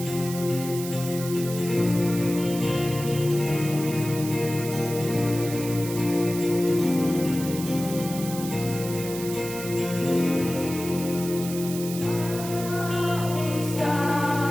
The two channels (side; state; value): right; noise; hiss, 10 dB below the sound